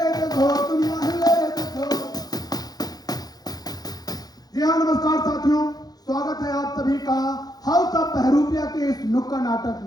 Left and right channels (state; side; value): late; right; 0.19 ms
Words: जगो दुनिया, हिले जगो। जी हाँ, नमस्कार साथियों, स्वागत है आप सभी का हाउस ऑफ बहरूपिया के इस नुक्कड़ नाटक